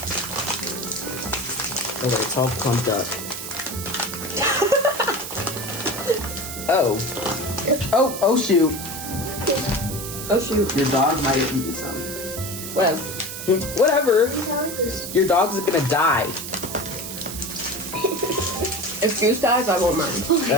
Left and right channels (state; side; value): noise; right; hiss, 8 dB below the sound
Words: Okay, it's all clumped up. Oh shoot. Oh shoot. Your dog might have eaten some. Whatever. Your dog's gonna die. If Juice dies, I won't mind.